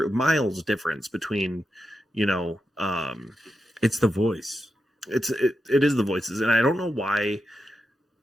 miles difference between it's the voice. It is the voices, and I don't know why.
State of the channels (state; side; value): normal; both; correlation 0.87